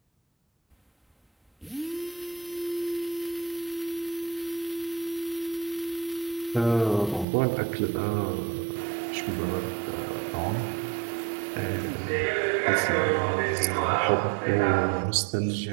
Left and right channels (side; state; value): left; drops out; at 7.2 s